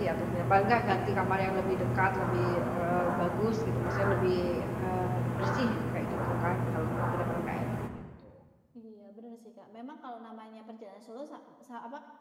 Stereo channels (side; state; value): both; identical; correlation 1.00